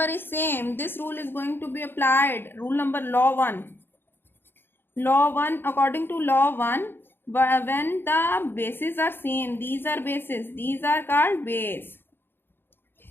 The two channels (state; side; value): late; right; 0.10 ms